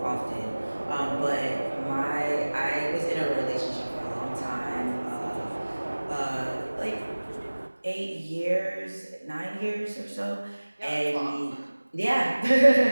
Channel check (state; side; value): inverted; both; correlation -1.00